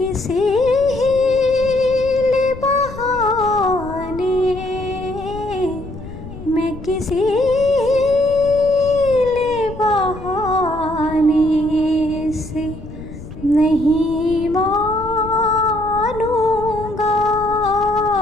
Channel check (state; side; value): noise; left; rumble, 13 dB below the sound